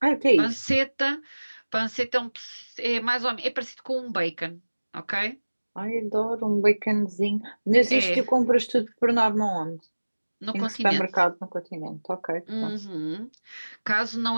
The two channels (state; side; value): inverted; both; correlation -1.00